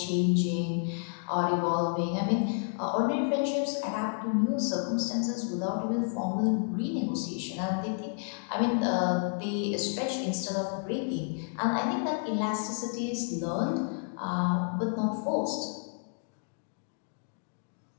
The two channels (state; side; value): silent; right; 57 dB below the other